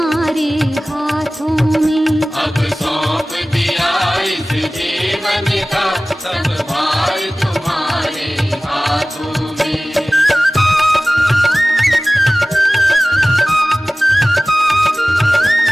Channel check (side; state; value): both; normal; correlation 0.97